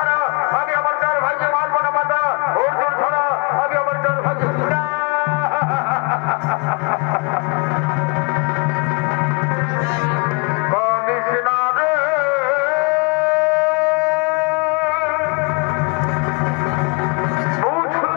আমি আমার চার ভাইকে মারবো না মাতা। অর্জুন ছাড়া আমি আমার চার ভাইকে কৃষ্ণা রে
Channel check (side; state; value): right; quieter; 30.4 dB